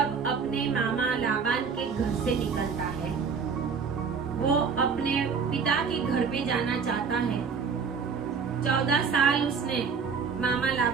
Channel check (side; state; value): left; quieter; 5.8 dB